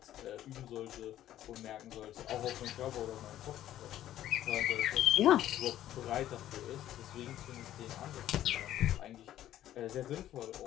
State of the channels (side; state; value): right; quieter; 12.6 dB